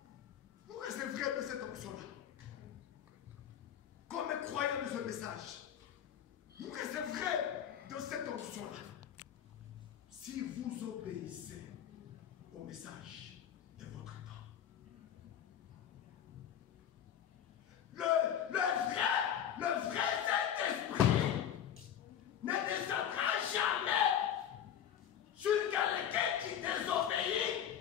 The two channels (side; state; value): right; quieter; 9.4 dB